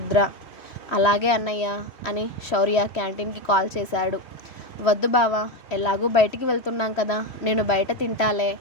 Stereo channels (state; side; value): late; right; 3.1 ms